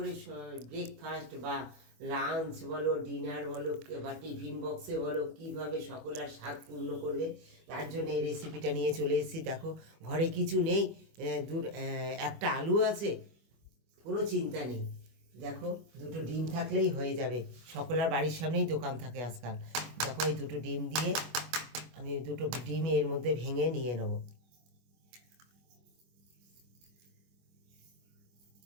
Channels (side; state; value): left; late; 25 ms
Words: ব্রেকফাস্ট বা লাঞ্চ বলো, ডিনার বলো বা টিফিন বক্সে বলো, কীভাবে সকলের স্বাদ পূর্ণ করবে, তার জন্য এই রেসিপিটা নিয়ে চলে এসেছি। দেখো, ঘরে কিছু নেই, একটা আলু আছে, কোনো চিন্তা নেই। দেখো, দুটো ডিম থাকলেই হয়ে যাবে। সকলের বাড়ির সামনেই দোকান থাকে আজকাল। দেখো, এই দুটো ডিম দিয়ে আমি দুটো ডিম এর মধ্যে ভেঙে নিয়ে নেব।